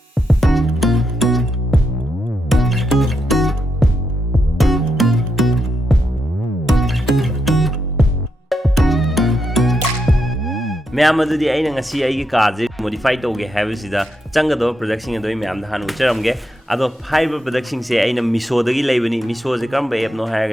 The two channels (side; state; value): both; normal; correlation 0.83